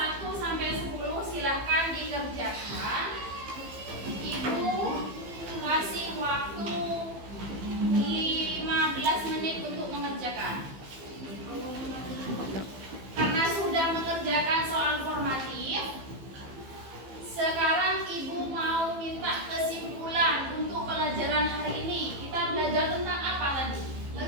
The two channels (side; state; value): left; late; 15 ms